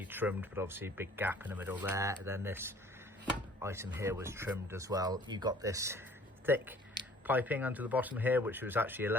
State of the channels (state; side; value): normal; both; correlation 0.53